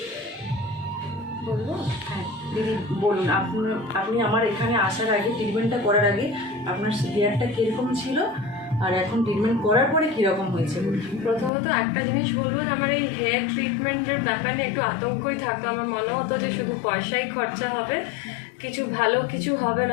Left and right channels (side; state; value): right; drops out; at 11.5 s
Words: বলবো? হ্যাঁ দিদি বলুন, আপনি আমার এখানে আসার আগে, ট্রিটমেন্টটা করার আগে আপনার হেয়ারটা কীরকম ছিল আর এখন ট্রিটমেন্ট করার পরে কীরকম হয়েছে? প্রথমত একটা জিনিস বলবো যে আমার এই হেয়ার ট্রিটমেন্টের ব্যাপারে একটু আতঙ্কই থাকতো। আমার মনে হতো যে শুধু পয়সাই খরচা হবে, কিছু ভালো কিছু হবে